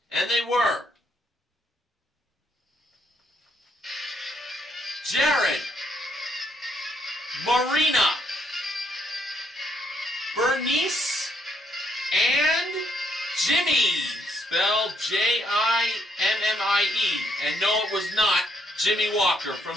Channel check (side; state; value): both; normal; correlation 0.73